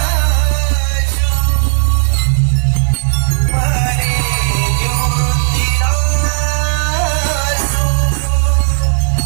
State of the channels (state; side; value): silent; left; 66 dB below the other